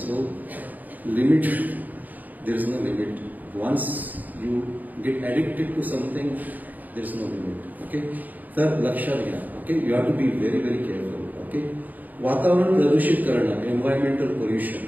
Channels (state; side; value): late; left; 0.082 ms